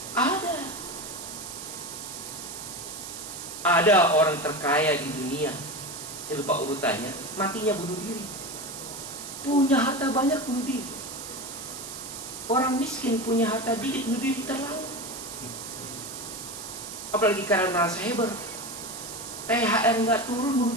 Ada. Ada orang terkaya di dunia, saya lupa urutannya, matinya bunuh diri. Punya harta banyak, bunuh diri. Orang miskin punya harta dikit, bunuh diri terlalu. Apalagi karena narasaiber, THR nggak turun, bunuh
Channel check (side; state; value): right; noise; hiss, 9 dB below the sound